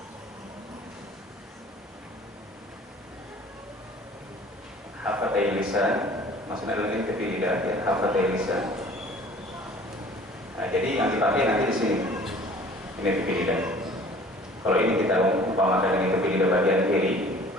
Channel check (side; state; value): both; normal; correlation 0.49